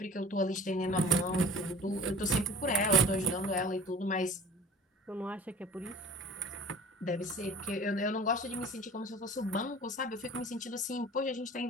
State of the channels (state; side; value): normal; both; correlation 0.44